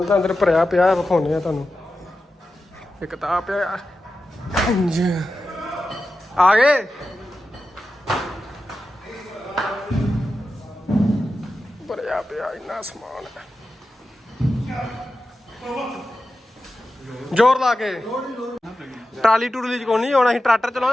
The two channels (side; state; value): both; normal; correlation 0.92